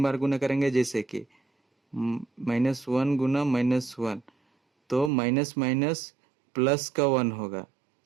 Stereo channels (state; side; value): drops out; left; at 5.1 s